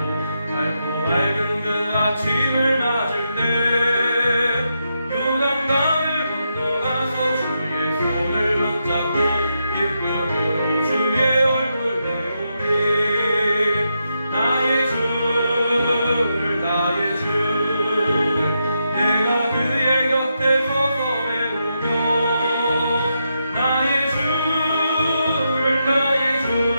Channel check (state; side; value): inverted; both; correlation -0.84